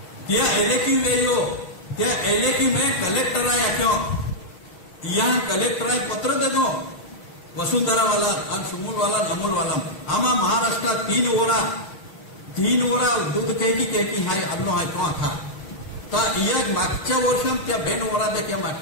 त्या एलेकी वेयो त्या एलेकी में कलेक्टर आया क्यों यहाँ कलेक्टर आए पत्र दे दो वसुंधरा वाला और सुमुल वाला नमुल वाला आमा महाराष्ट्र 3 ओरा दूध कहकी हाय अन्नो हाय तो था ता या मागच्या वर्षात त्या 2 ओरा देखील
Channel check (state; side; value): late; right; 6.6 ms